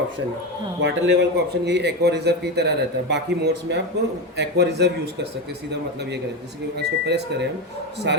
है, वाटर लेवल का ऑप्शन यही एक्वा रिजर्व की तरह रहता है। बाकी मोड्स में आप एक्वा रिजर्व यूज़ कर सकते हैं, सीधा मतलब ये करें जैसे कि इसको प्रेस करें हम,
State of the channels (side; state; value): both; normal; correlation 0.16